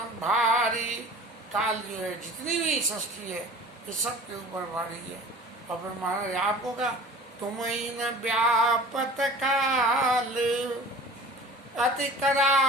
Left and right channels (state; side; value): normal; both; correlation 0.42